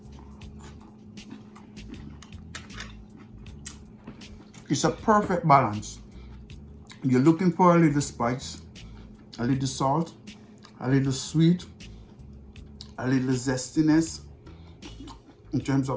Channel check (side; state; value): both; identical; correlation 1.00